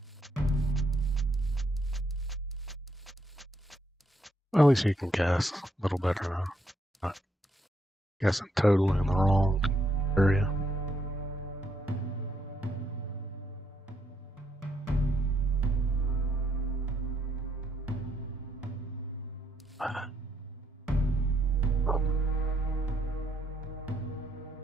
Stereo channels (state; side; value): normal; both; correlation 0.74